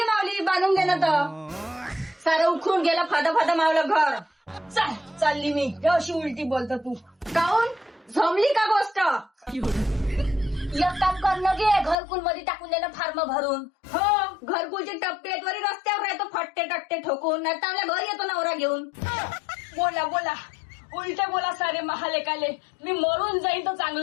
मावली बांधून घे ना. तर सारं उखून गेलं. फादा मावलं घर. चालली मी. अशी उलटी बोलतो तू. काऊन जमली का गोष्ट? एक काम करणं गे, घरकुल मध्ये टाकून देणं फार्म भरून. हो, घरकुलचे टप्पे वरी रस्त्यावर येतो फट्टे टट्टे ठोकून. नाही तर आपल्या घरी येतो नवरा घेऊन. बोला उलटे बोला सारे महालेकाले. मी मरून जाईन तर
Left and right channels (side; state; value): right; drops out; at 12.0 s